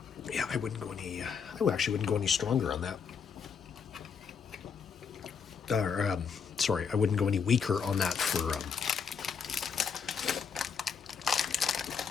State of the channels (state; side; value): quieter; right; 6.3 dB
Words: Yeah, I actually wouldn't go any stronger on that. I wouldn't go any weaker on that for